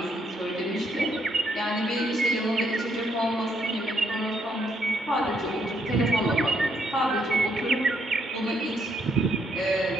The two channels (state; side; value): normal; both; correlation 0.73